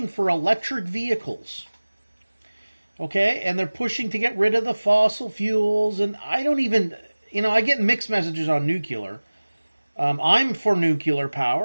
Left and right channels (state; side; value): inverted; both; correlation -1.00